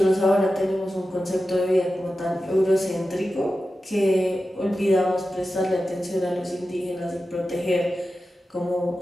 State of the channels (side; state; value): both; normal; correlation 0.93